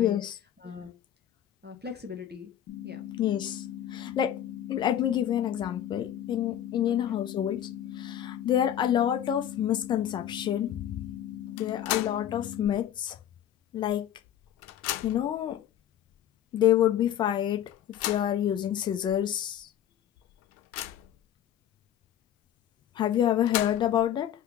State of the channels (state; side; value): quieter; right; 10.9 dB